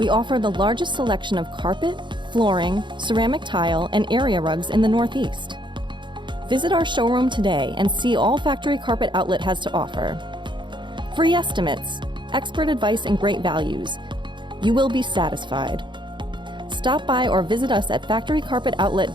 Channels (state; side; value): late; left; 0.23 ms